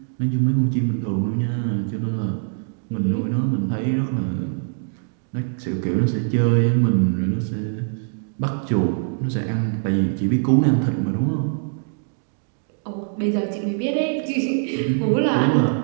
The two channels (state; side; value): silent; left; digital silence